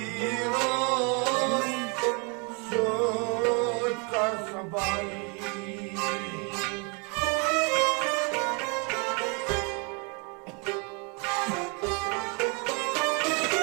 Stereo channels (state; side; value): quieter; left; 33.7 dB